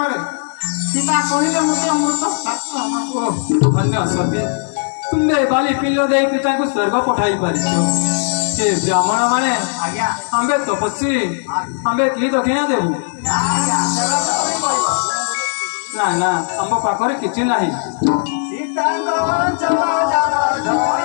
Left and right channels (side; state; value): right; silent; digital silence